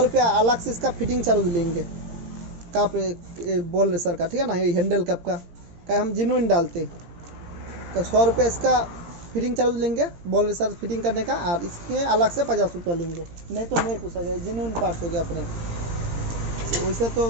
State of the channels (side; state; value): left; late; 17 ms